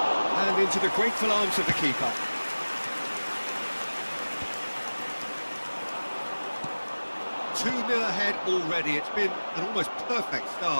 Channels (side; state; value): both; inverted; correlation -1.00